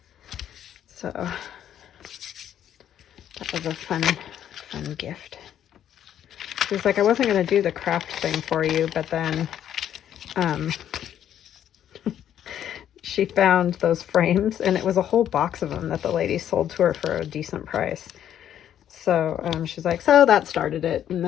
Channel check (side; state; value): right; quieter; 10.3 dB